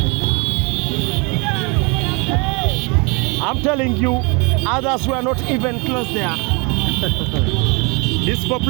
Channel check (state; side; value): quieter; left; 30.8 dB